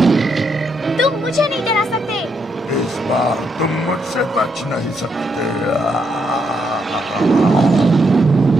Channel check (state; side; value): normal; both; correlation 0.77